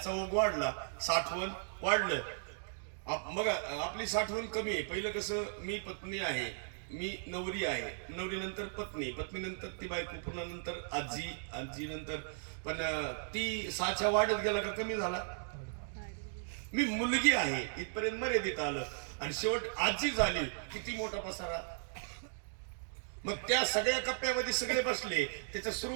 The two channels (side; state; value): left; silent; digital silence